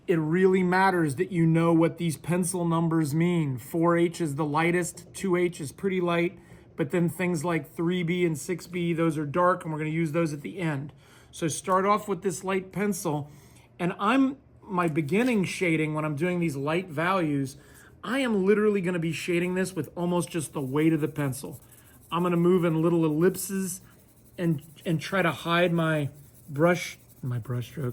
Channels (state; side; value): identical; both; correlation 1.00